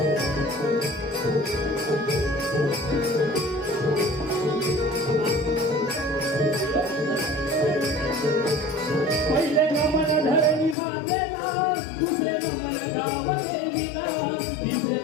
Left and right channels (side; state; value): right; drops out; at 10.8 s